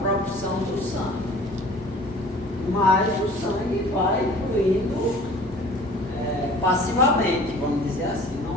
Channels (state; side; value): normal; both; correlation 0.47